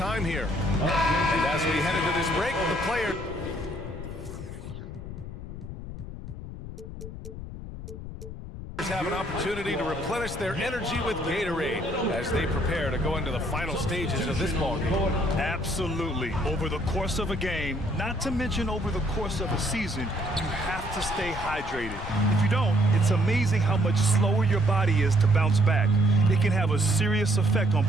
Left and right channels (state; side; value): noise; left; rumble, 10 dB below the sound